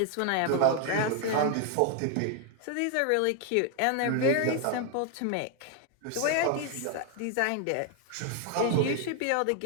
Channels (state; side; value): different; both; correlation 0.01